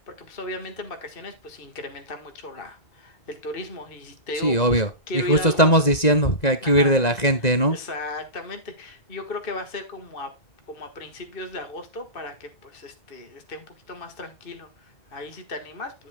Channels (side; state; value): right; late; 1.9 ms